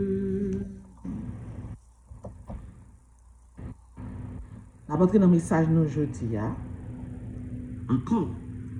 La dans le message nous aujourd'hui, encore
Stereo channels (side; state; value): both; identical; correlation 1.00